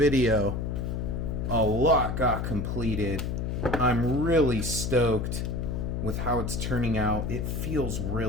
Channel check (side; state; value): left; noise; hum, 2 dB below the sound